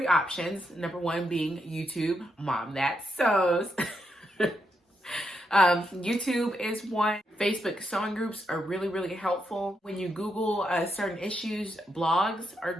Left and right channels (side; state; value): both; normal; correlation 0.81